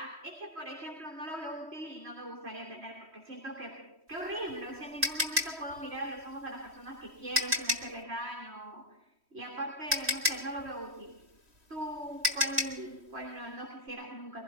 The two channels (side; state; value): left; late; 3.1 ms